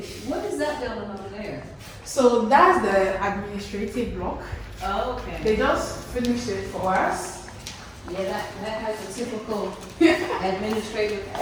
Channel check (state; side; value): identical; both; correlation 1.00